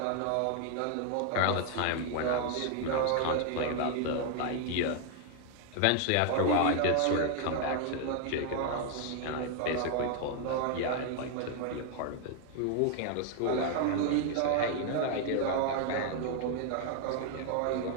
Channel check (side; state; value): both; different; correlation 0.00